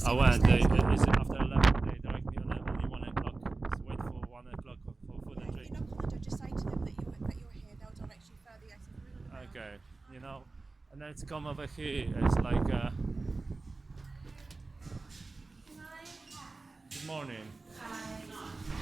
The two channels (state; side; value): quieter; left; 3.6 dB